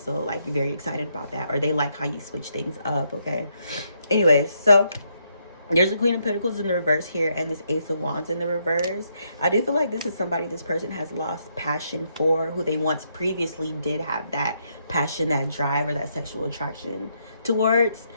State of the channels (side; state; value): both; inverted; correlation -0.76